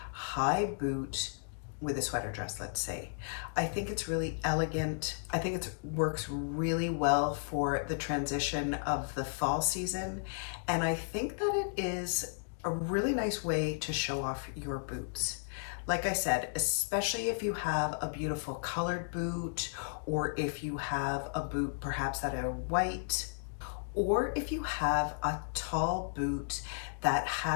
high boot with a sweater dress, let's say. I think it's really elegant. I think it works really well for the transition of the fall season. And I think that it is a really nice way to show off your boots. Like I said, especially if you have a beautiful colored boot, or if you have a boot perhaps that are white, or if you have a tall boot that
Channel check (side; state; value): right; silent; digital silence